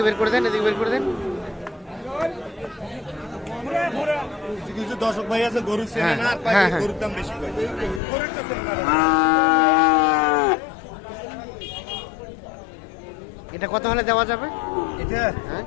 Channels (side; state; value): right; drops out; at 8.0 s